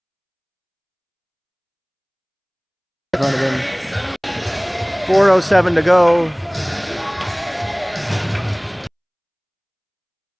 in front of him. 4:07 to go.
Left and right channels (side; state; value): both; identical; correlation 1.00